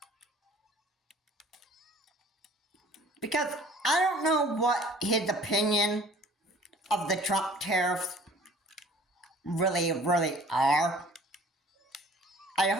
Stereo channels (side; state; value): both; normal; correlation 0.51